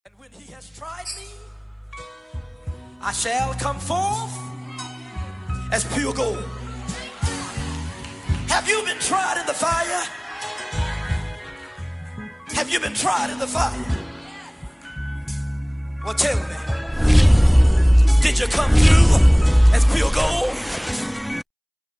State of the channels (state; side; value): identical; both; correlation 1.00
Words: And when he has tried me, I shall come forth as pure gold. Have you been tried in the fire? Have you been tried in the fire? Well, tell me, did you come through as pure gold?